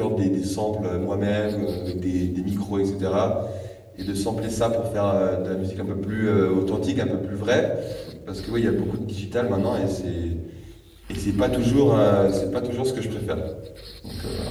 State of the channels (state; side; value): identical; both; correlation 1.00